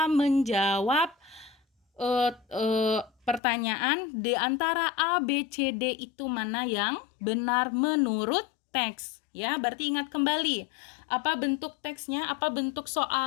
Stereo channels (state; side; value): drops out; right; at 3.4 s